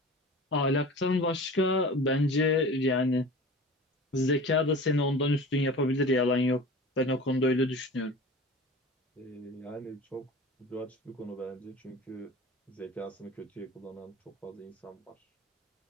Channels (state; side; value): normal; both; correlation 0.37